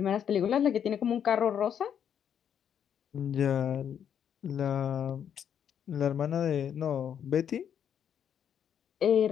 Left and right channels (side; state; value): right; quieter; 8.7 dB